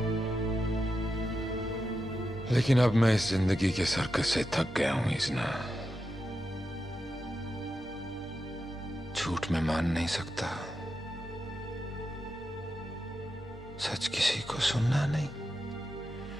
लेकिन अब मैं इस जिंदगी के सर्कस से थक गया हूं इज़्ना। झूठ में मान नहीं सकता, सच किसी को सुनना नहीं।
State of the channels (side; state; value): both; normal; correlation 0.88